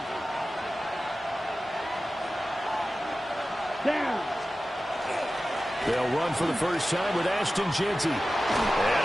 Down. They'll run for the first time with Ashton Jeanty. And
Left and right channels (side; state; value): both; normal; correlation 0.95